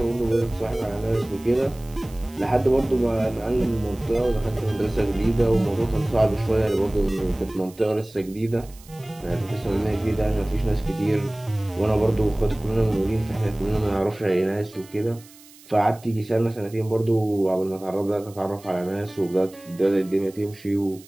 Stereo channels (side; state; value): right; noise; hiss, 23 dB below the sound